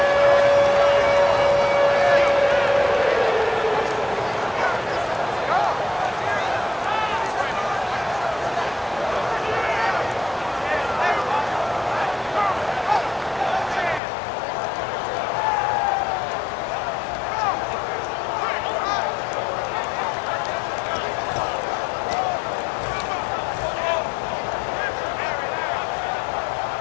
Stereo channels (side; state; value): right; drops out; at 14.0 s